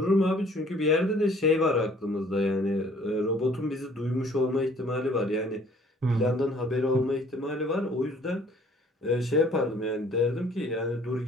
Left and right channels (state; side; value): normal; both; correlation 0.57